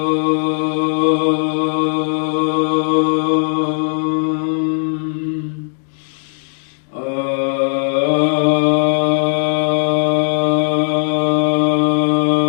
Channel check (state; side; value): silent; right; digital silence